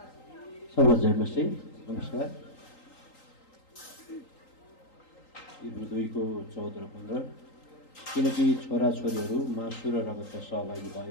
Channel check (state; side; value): late; right; 3.8 ms